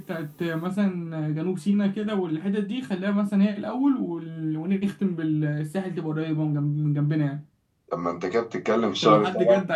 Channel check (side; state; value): both; identical; correlation 1.00